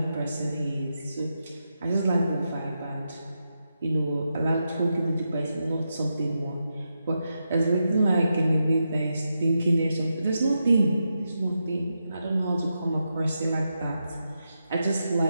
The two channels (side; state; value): both; inverted; correlation -0.86